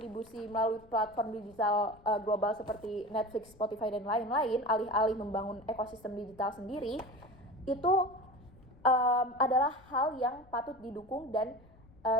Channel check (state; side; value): noise; left; rumble, 25 dB below the sound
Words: melalui platform digital global seperti Netflix, Spotify, dan lain-lain, alih-alih membangun ekosistem digital sendiri, itu adalah hal yang patut didukung dan